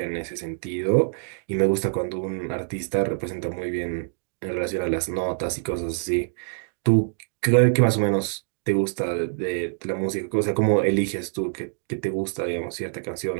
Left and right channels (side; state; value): left; silent; digital silence